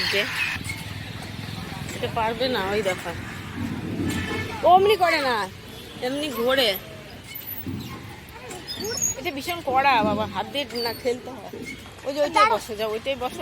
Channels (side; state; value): both; identical; correlation 1.00